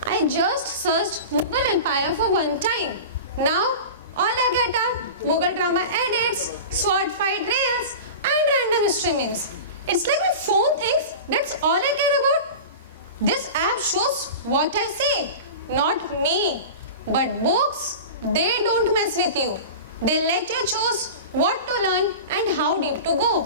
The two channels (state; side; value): inverted; both; correlation -0.31